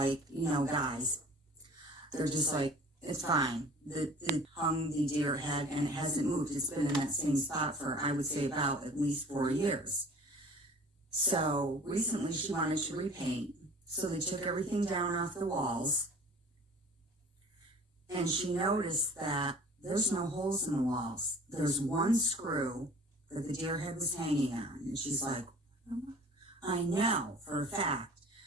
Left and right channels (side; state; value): both; normal; correlation 0.47